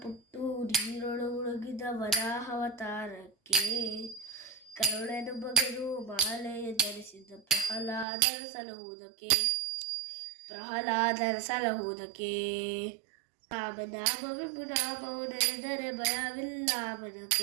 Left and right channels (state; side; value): drops out; left; at 8.1 s